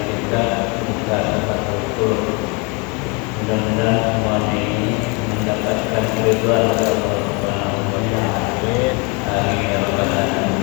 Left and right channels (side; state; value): right; quieter; 30.9 dB